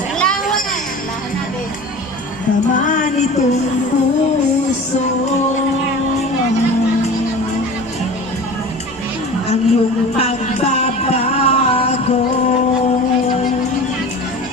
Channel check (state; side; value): normal; both; correlation 0.37